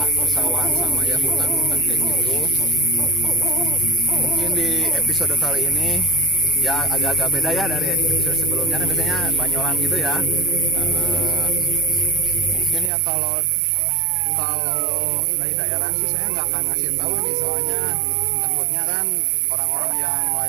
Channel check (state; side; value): drops out; left; at 12.9 s